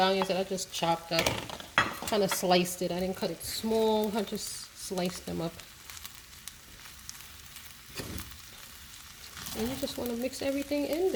that I just chopped up. Kind of sliced it. I didn't cut it small. I just sliced them up. And you just want to mix everything in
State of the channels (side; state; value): both; identical; correlation 1.00